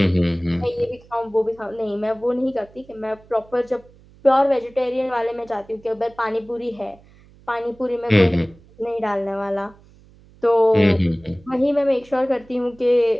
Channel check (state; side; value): noise; right; hum, 26 dB below the sound